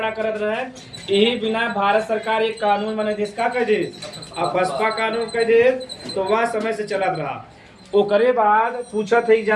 करत रहे। यही बिना भारत सरकार एक कानून बने देश का कह दे, अपस्पा कानून कह दे, तो वह समय से चलत रहा। ओकरे बाद पूछत है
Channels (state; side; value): identical; both; correlation 1.00